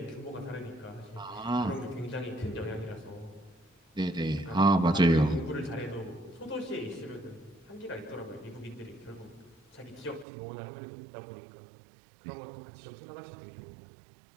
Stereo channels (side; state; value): left; drops out; at 10.2 s